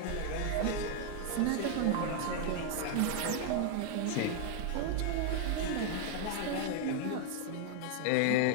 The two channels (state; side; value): different; both; correlation 0.00